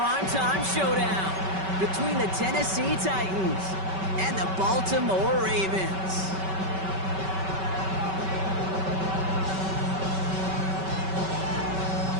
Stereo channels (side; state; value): left; late; 5.2 ms